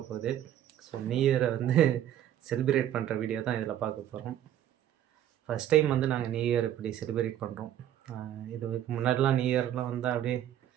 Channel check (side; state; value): left; quieter; 11.3 dB